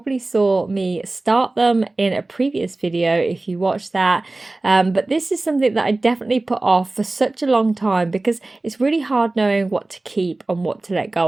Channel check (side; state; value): left; quieter; 3.0 dB